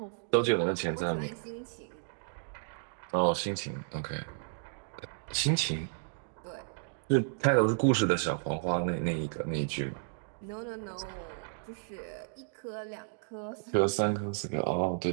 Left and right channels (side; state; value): left; silent; digital silence